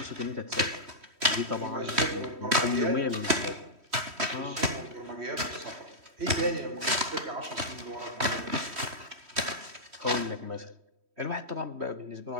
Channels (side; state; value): left; late; 3.1 ms